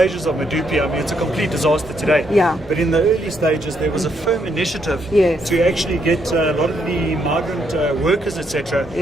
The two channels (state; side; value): normal; both; correlation 0.75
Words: of Medupi, I mean, it's a complete disaster today. Yeah. But in the early stages, there was a firm initiative to actually get a lot of the migrant workers, etc.,